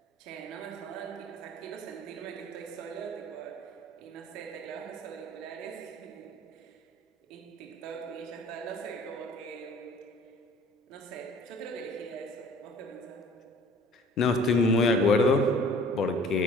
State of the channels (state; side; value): normal; both; correlation 0.50